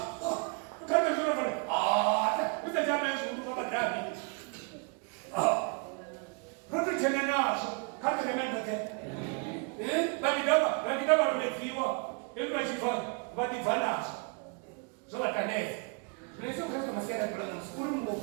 kama ndio fana ndio jamaa zungu kama dabi hapo tena nazo kama ndio mmoja badi daba umefiwa hebu achifanya badi vanas zola kaneza tunaweza kuleta masiara kwa mskuru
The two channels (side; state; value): left; quieter; 35.4 dB